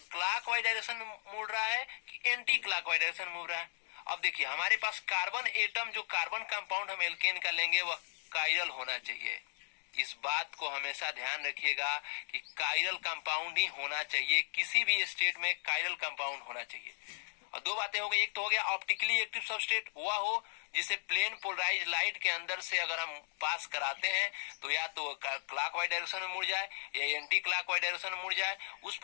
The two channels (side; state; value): right; silent; digital silence